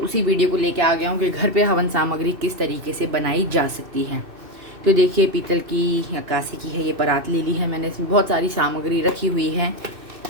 वीडियो को लेके आ गया हूँ कि घर पे हवन सामग्री किस तरीके से बनाई जा सकती है। तो देखिए, पीतल की या कांसे की है ये परात ले ली है मैंने। इसमें बहुत सारी सामग्री रखी हुई है,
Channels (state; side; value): late; left; 2.6 ms